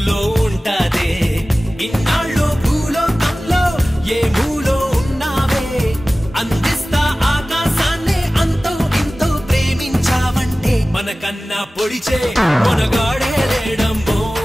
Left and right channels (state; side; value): normal; both; correlation 0.97